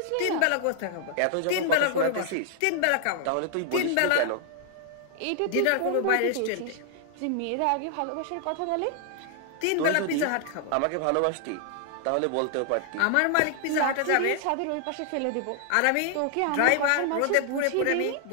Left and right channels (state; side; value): different; both; correlation 0.00